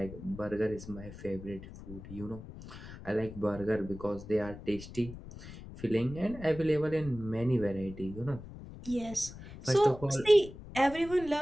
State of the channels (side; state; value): left; noise; rumble, 14 dB below the sound